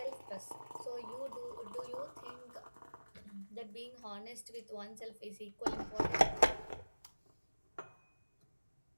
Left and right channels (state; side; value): inverted; both; correlation -1.00